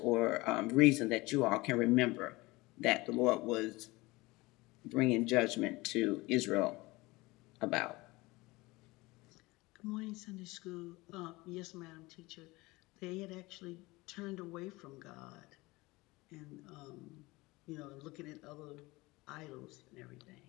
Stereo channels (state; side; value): quieter; right; 21.9 dB